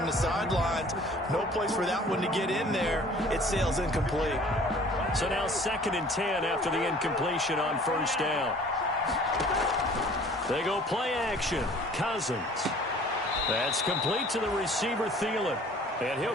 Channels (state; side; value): normal; both; correlation 0.51